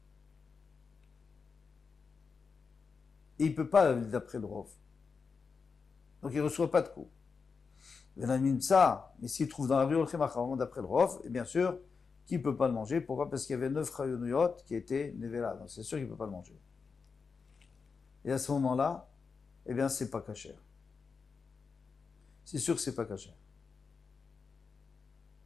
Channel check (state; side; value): quieter; right; 5.2 dB